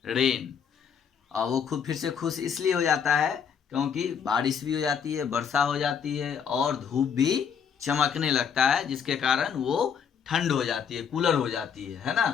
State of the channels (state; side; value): quieter; right; 7.3 dB